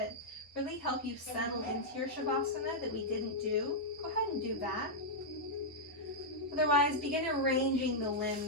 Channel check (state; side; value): normal; both; correlation -0.06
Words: really help you settle into your Shavasana that we didn't do, go ahead and do that. Otherwise, begin arranging the